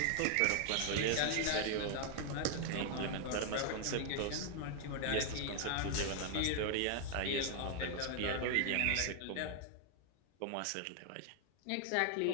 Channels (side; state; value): both; different; correlation 0.00